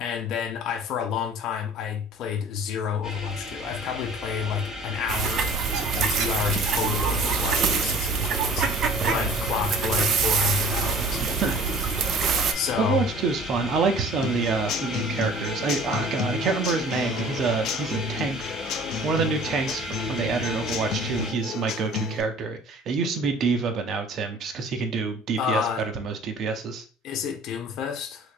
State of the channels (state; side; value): normal; both; correlation 0.48